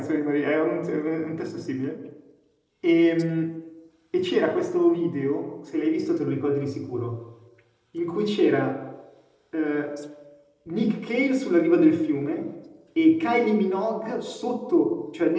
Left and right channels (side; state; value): both; identical; correlation 1.00